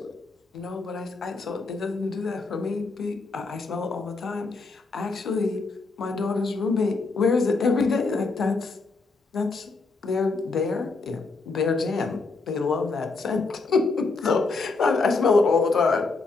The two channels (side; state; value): right; quieter; 3.9 dB